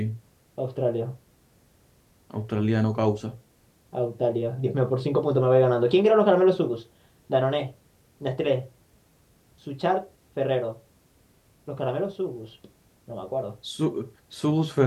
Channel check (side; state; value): both; identical; correlation 1.00